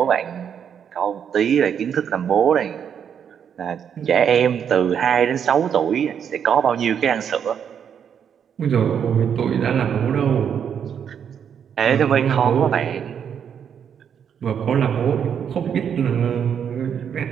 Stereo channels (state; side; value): quieter; left; 8.0 dB